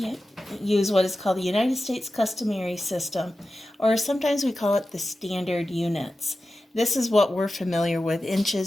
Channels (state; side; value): normal; both; correlation 0.93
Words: use what is called the United States customary system, or sometimes we call it the standard units. This is what we're familiar with: